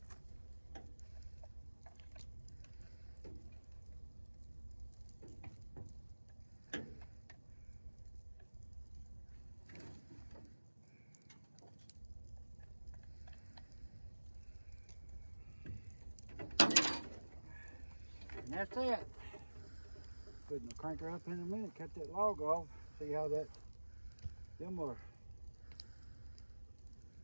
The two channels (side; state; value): both; inverted; correlation -1.00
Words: And that's it. Putting the cranker up in a minute, cut that log off, see how that, them are,